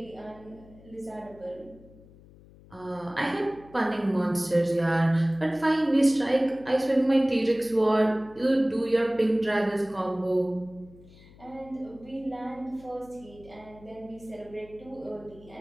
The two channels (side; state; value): left; noise; hum, 23 dB below the sound